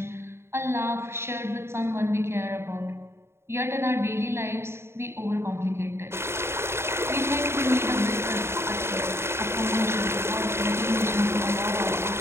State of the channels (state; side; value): late; left; 0.12 ms